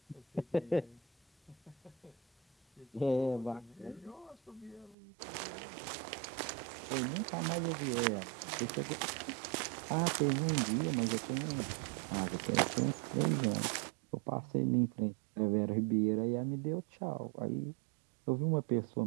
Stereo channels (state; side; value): drops out; left; at 5.0 s